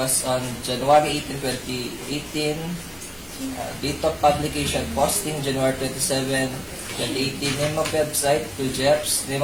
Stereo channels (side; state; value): both; identical; correlation 1.00